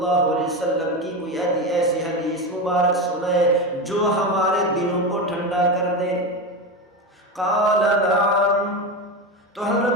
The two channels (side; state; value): both; normal; correlation 0.18